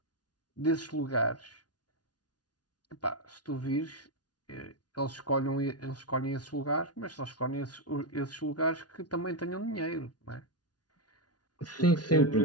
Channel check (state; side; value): late; right; 0.69 ms